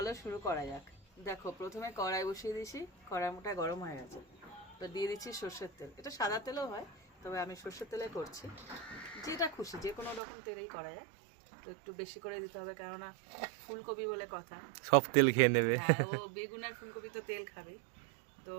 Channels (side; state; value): left; drops out; at 10.2 s